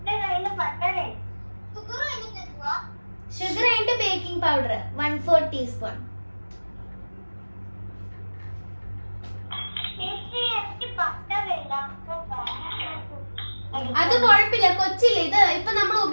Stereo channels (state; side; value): inverted; both; correlation -1.00